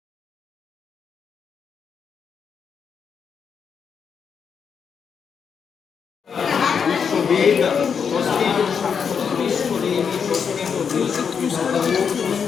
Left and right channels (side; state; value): right; quieter; 6.7 dB